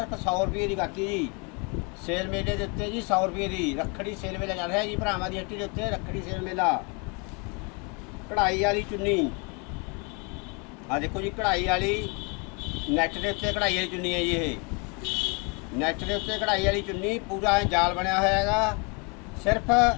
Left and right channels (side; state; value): right; quieter; 32.7 dB